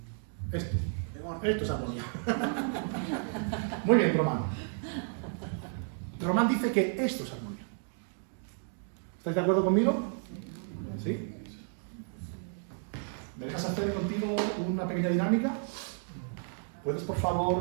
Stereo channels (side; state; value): left; silent; 56 dB below the other